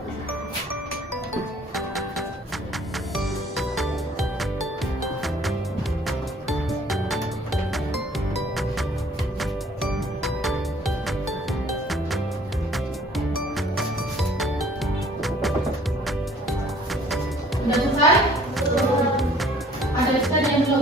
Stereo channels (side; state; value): both; normal; correlation 0.56